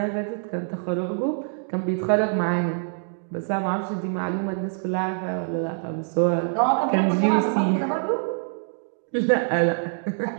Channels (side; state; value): left; silent; digital silence